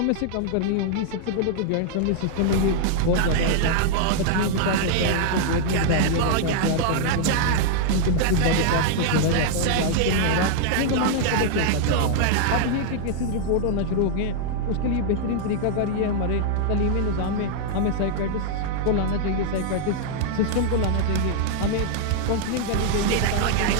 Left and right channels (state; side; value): different; both; correlation -0.01